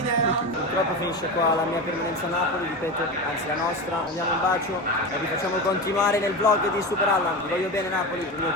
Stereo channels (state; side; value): normal; both; correlation 0.23